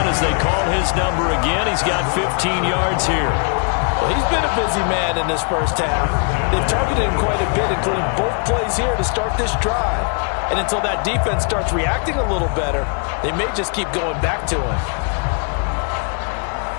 as they call his number again. He's got 15 yards here. Well, he's been a busy man in this first half. They've targeted him quite a bit, including both plays here to start this drive. And until that defense starts reacting a little better, they may just keep going back to him.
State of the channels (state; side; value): quieter; right; 39.9 dB